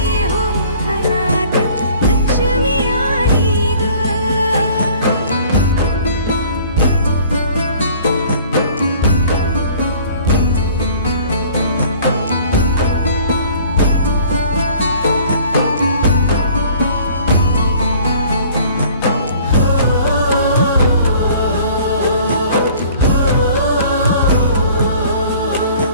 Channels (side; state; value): both; inverted; correlation -0.51